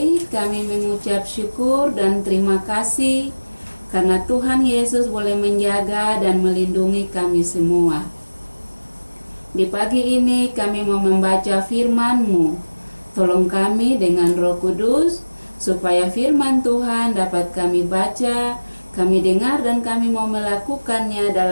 kami mengucap syukur dan terima kasih karena Tuhan Yesus boleh menjaga dan melindungi kami semua. Di pagi ini kami mau membaca firman-Mu. Tolong kami dengan Roh Kudus, supaya firman Tuhan dapat kami baca, kami dengar dan kami mau melakukannya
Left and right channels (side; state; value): both; inverted; correlation -1.00